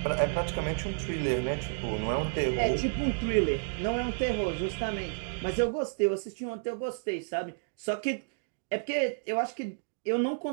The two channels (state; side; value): silent; left; digital silence